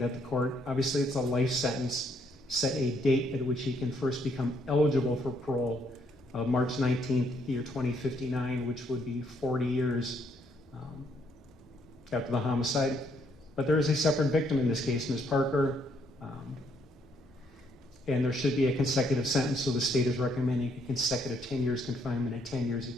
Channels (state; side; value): normal; both; correlation 0.71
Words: the court, obviously it's a life sentence, set a date at which he can first become eligible for parole. of March 19th, year 2059, which would be 40 years after the homicide. But there is a separate victim in this case, Ms. Parker, and there should be a consecutive sentence, so the state is recommending a consecutive 10 years confinement and 10